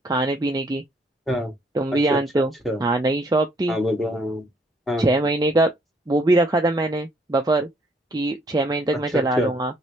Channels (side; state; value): both; normal; correlation 0.65